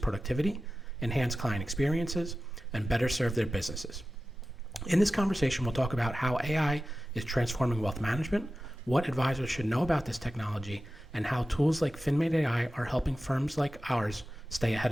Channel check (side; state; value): both; normal; correlation 0.94